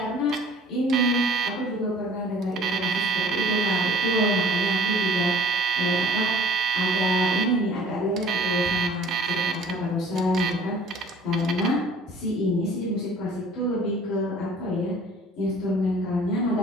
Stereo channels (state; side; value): normal; both; correlation 0.50